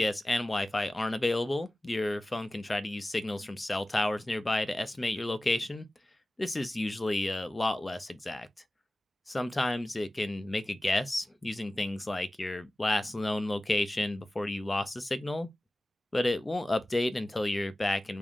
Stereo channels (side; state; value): both; normal; correlation 0.97